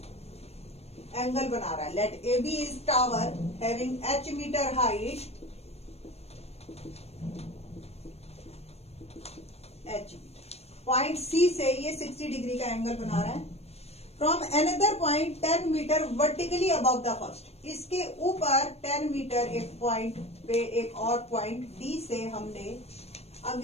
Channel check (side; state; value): right; late; 0.30 ms